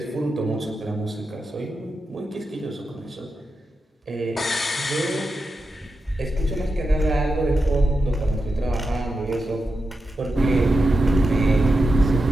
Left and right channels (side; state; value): both; normal; correlation 0.89